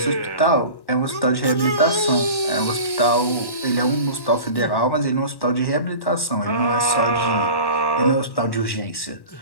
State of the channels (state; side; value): late; right; 1.1 ms